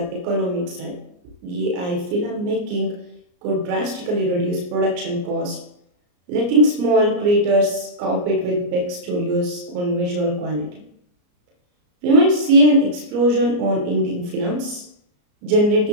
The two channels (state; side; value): late; left; 34 ms